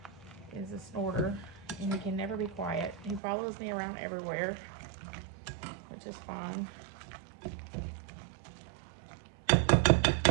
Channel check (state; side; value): drops out; left; at 3.2 s